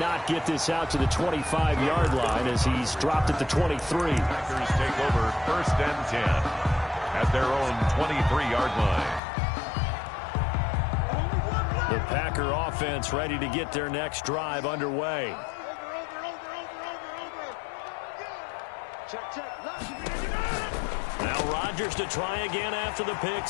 get this out to the 25-yard line as he's dropped at the 23. Packers take over 1st and 10 at their own 23-yard line. The Packer offense ready to get their next drive underway. Now Rodgers to try again after the pick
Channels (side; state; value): right; drops out; at 9.2 s